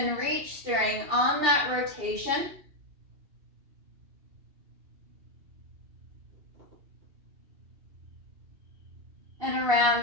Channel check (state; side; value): late; left; 2.7 ms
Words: reach, stirring on that rotation. And around